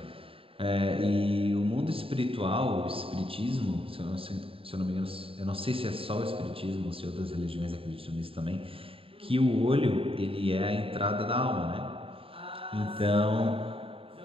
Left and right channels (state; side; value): late; left; 0.27 ms